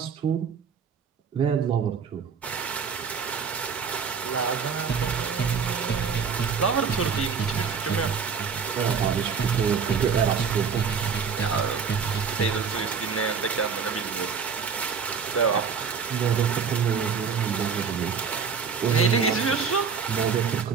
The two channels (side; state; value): left; quieter; 6.1 dB